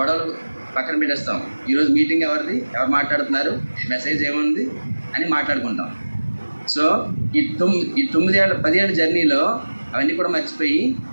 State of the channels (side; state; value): both; inverted; correlation -1.00